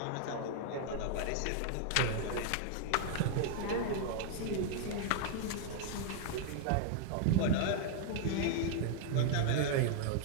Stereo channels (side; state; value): both; different; correlation 0.00